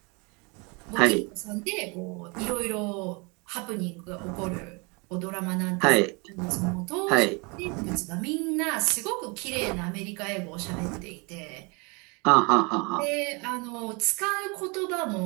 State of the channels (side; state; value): left; quieter; 30.0 dB